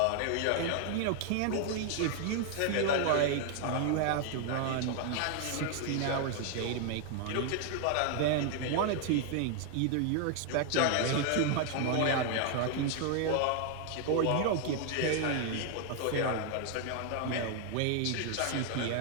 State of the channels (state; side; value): different; both; correlation 0.00